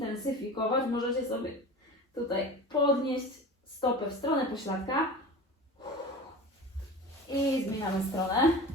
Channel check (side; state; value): both; normal; correlation 0.34